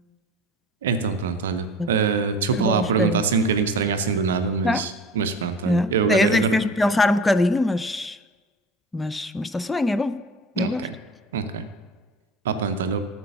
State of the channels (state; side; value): normal; both; correlation 0.37